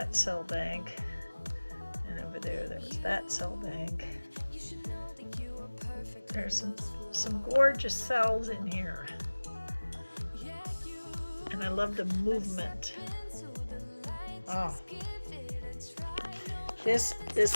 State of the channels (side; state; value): both; inverted; correlation -1.00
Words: cell bank. And over there was that cell bank. There's some gorgeous cells in here. And I love the movement. Oh,